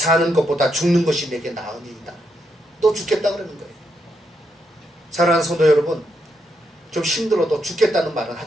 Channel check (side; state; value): both; normal; correlation 0.80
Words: 것보다 죽는 것이 내게 나으니이다. 너 죽겠다 그러는 거예요. 사랑하는 성도 여러분, 좀 힘들어도 죽겠다는 말은